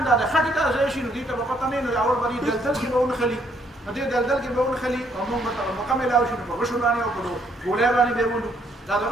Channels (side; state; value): both; normal; correlation 0.69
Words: دا د خټې ته ځای شي نو دې ته به پته نه وي نو اول به دې دلدل کې به ونښلي نو دې دلدل کې به ونښلي او مونږ به ته موقع میلاو شي نو په غشو باندې او په ګولۍ باندې به یې ولو دا د